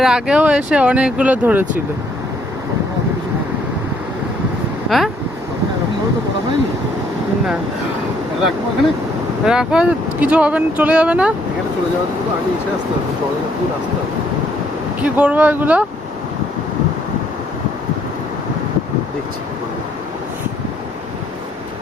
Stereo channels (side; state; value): both; normal; correlation 0.68